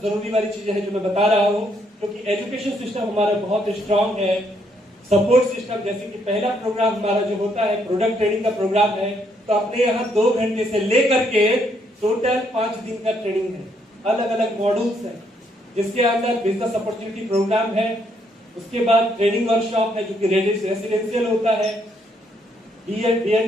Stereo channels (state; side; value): normal; both; correlation 0.72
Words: जरूरी वाली चीजें हैं जो मैं बता रहा हूँ, क्योंकि एजुकेशन सिस्टम हमारा बहुत स्ट्रांग है। सपोर्ट सिस्टम, जैसे कि पहला प्रोग्राम हमारा जो होता है प्रोडक्ट ट्रेनिंग का प्रोग्राम है, तो अपने यहाँ 2 घंटे से लेकर के टोटल 5 दिन का ट्रेनिंग है। अलग अलग मॉड्यूल्स हैं, जिसके अंदर बिजनेस अपॉर्चुनिटी प्रोग्राम है, उसके बाद ट्रेनिंग वर्कशॉप है जो कि रेसिडेंशियल होता है,